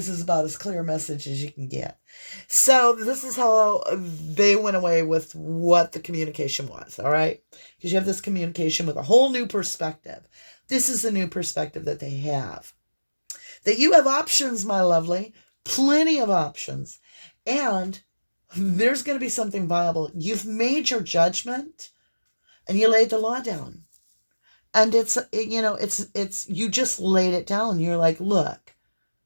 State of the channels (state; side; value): inverted; both; correlation -1.00